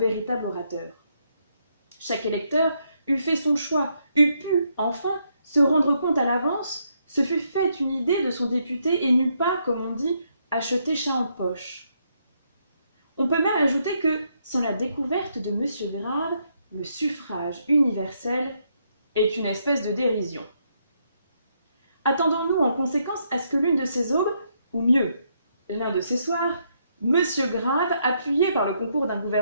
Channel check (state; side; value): inverted; both; correlation -0.76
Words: orateur. Chaque électeur eût fait son choix, eût pu, enfin, se rendre compte à l'avance, se fût fait une idée de son député et n'eût pas, comme on dit, acheté chat en poche. On peut même ajouter que, sans la découverte de M. Grave, le suffrage universel est une espèce de dérision. Attendons-nous en conséquence à ce que l'une de ces aubes, ou mieux, l'un de ces soirs, M. Grave, appuyé par le concours d'un